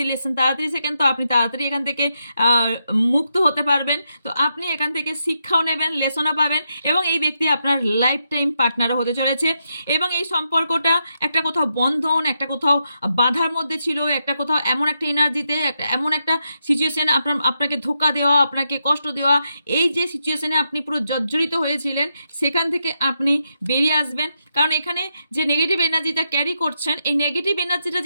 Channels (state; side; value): inverted; both; correlation -0.83